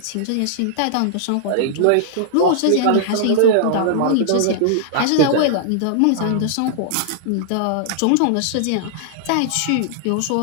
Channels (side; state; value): both; different; correlation -0.01